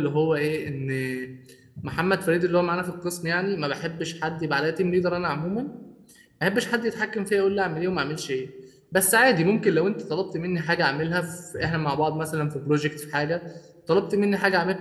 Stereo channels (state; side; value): identical; both; correlation 1.00